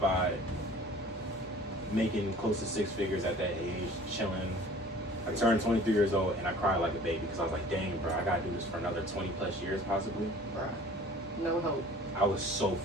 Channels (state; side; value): normal; both; correlation 0.47